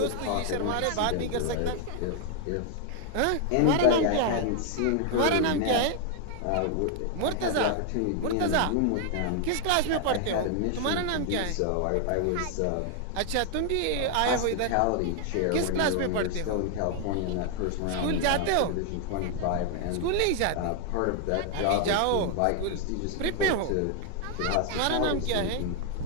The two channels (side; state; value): both; different; correlation 0.00